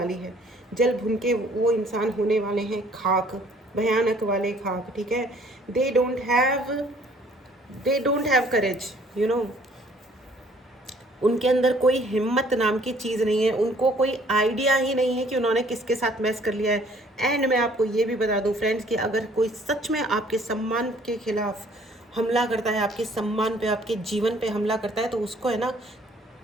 है। जल भुन के वो इंसान होने वाले हैं खाक, भयानक वाले खाक, ठीक है। दे डोंट हैव करेज, उनके अंदर कोई हिम्मत नाम की चीज़ नहीं है। उनको कोई आइडिया ही नहीं है कि उन्होंने किसके साथ मैस कर लिया है। एंड मैं आपको ये भी बता दूं फ्रेंड्स कि अगर कोई सच में आपके सम्मान के खिलाफ हमला करता है, आपके सम्मान पे, आपके जीवन पे हमला करता है, तो उसको है ना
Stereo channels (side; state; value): both; normal; correlation 0.58